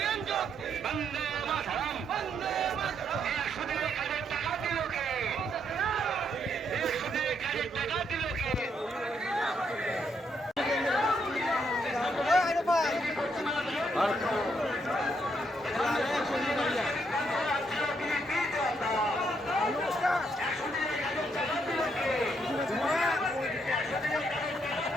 বন্দে মাতরম। 100 দিনের কাজের টাকা দিল কে? 100 দিনের কাজের টাকা দিল কে?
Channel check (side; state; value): both; normal; correlation 0.75